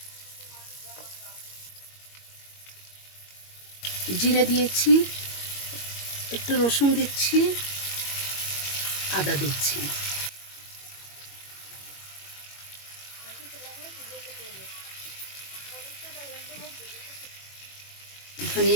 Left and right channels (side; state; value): right; late; 21 ms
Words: জিরে দিয়েছি, একটু রসুন দিচ্ছি, আদা দিচ্ছি,